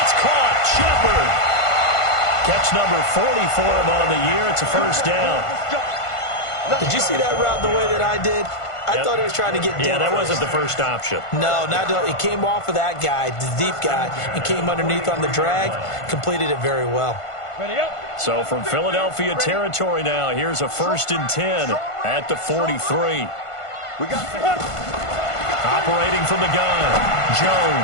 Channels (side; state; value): right; late; 1.5 ms